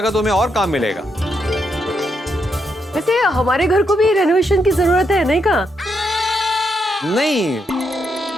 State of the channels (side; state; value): both; normal; correlation 0.80